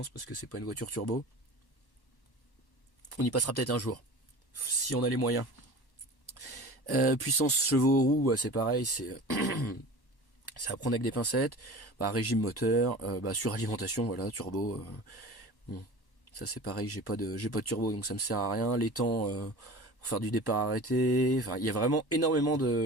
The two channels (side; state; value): right; late; 1.1 ms